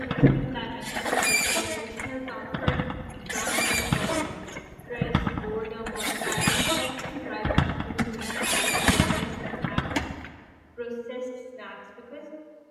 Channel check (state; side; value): identical; both; correlation 1.00